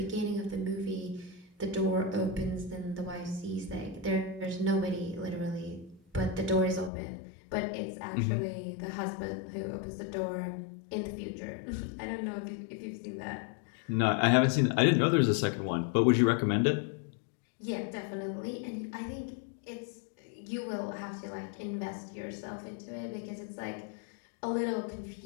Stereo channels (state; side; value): drops out; right; at 6.9 s